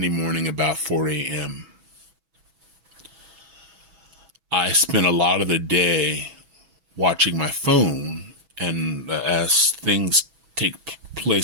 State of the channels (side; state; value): left; late; 6.1 ms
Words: morning about 4 a.m. I spent a lot of the day watching my phone, and as things take